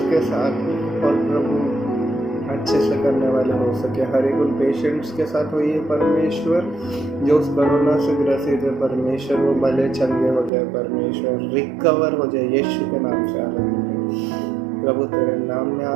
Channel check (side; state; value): left; drops out; at 10.5 s